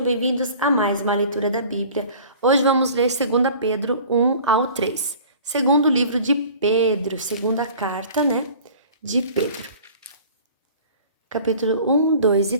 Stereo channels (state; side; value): inverted; both; correlation -0.45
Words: bem-vindos a mais uma leitura da Bíblia. Hoje vamos ler 2 Pedro 1 ao 3. Segundo livro de Pedro, segunda carta, de Pedro. Capítulo 1, 2 e